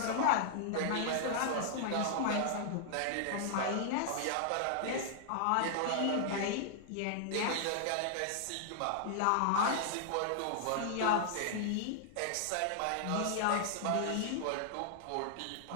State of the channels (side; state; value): both; different; correlation -0.01